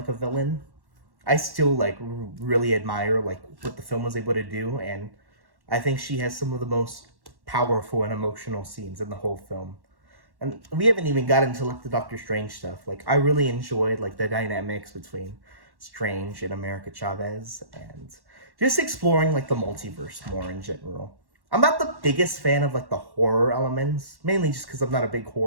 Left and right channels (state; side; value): late; left; 1.1 ms